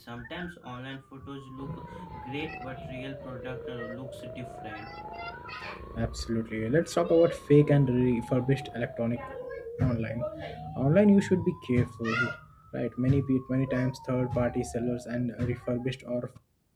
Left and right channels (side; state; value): both; identical; correlation 1.00